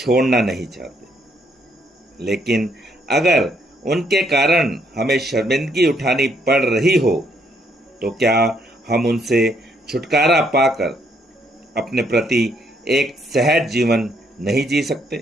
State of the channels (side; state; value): both; normal; correlation 0.71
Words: नहीं चाहते। लेकिन अगर उनके कारण हमें शर्मिंदगी उठानी पड़ रही हो तो क्या हम उनसे छुटकारा पाकर अपने प्रति एक सहज जीवन नहीं जी